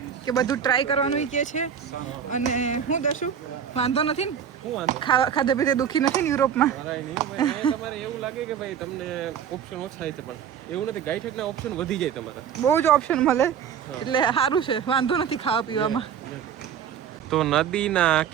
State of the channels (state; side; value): quieter; left; 8.2 dB